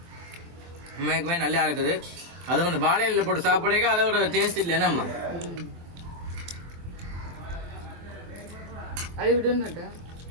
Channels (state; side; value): late; left; 23 ms